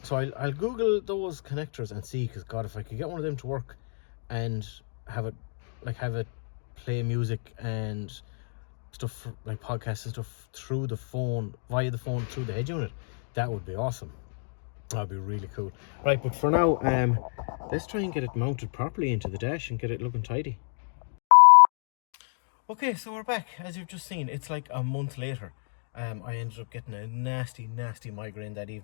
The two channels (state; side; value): silent; right; 58 dB below the other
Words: So I'll Google those connectors and see, because God, if I could get one of them to work and have it like have it play music and stuff like podcasts and stuff through the phone, via the phone through the head unit, that would be awesome. That'd be really cool. Right, but for now, let's try and get it mounted properly into the dash and get it looking tidy. Okay, so we're back. As you've just seen, it's like a month later. I ended up getting a nasty migraine that